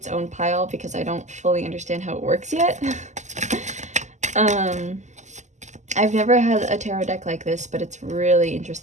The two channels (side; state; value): left; late; 0.34 ms